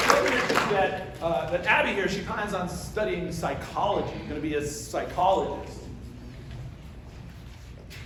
That Abby here, she plans on studying psychology, going to be a psychologist.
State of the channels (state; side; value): identical; both; correlation 1.00